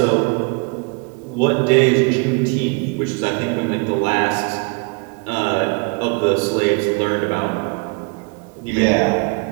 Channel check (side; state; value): left; quieter; 32.1 dB